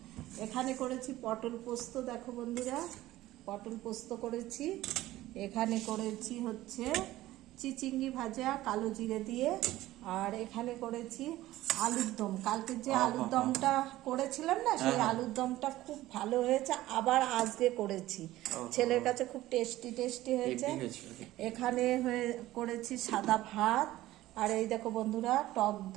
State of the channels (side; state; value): left; quieter; 15.9 dB